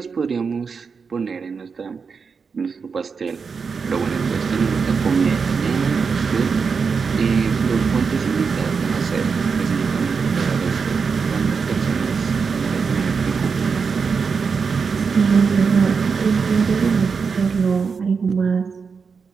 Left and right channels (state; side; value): quieter; left; 5.5 dB